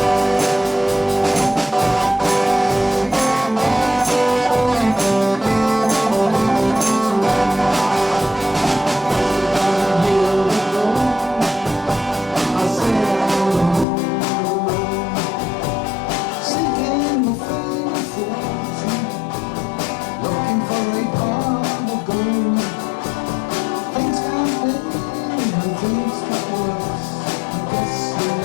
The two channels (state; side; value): drops out; right; at 13.9 s